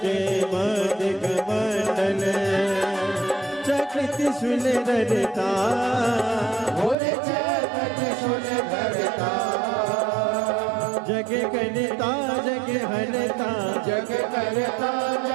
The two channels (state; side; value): drops out; left; at 7.0 s